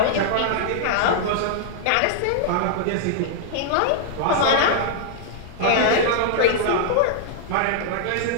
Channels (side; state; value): both; different; correlation -0.01